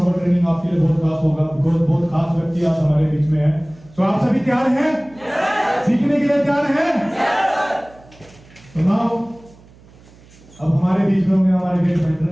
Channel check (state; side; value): noise; right; hum, 25 dB below the sound